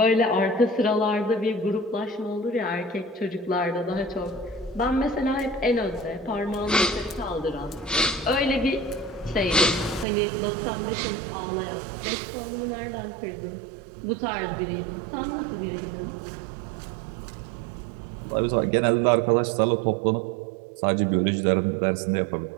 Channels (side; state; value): left; drops out; at 10.1 s